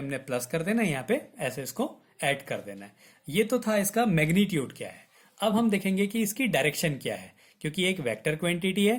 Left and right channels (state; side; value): identical; both; correlation 1.00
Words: प्लस कर देना, यहाँ पे ऐसे इसको ऐड कर देना है। ये तो था इसका मैग्नीट्यूड क्या है। अब हम देखेंगे कि इसकी डायरेक्शन क्या है, क्योंकि एक वेक्टर क्वांटिटी